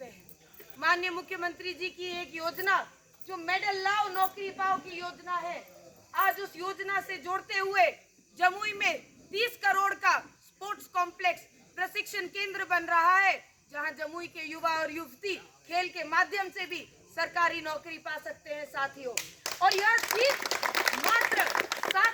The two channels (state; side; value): identical; both; correlation 1.00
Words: हैं। माननीय मुख्यमंत्री जी की एक योजना जो मेडल लाओ नौकरी पाओ की योजना है, आज उस योजना से जोड़ते हुए जमुई में 30 करोड़ का स्पोर्ट्स कॉम्प्लेक्स प्रशिक्षण केंद्र बन रहा है, जहां जमुई के युवा और युवती खेल के माध्यम से भी सरकारी नौकरी पा सकते हैं साथियों। और यह चीज मात्र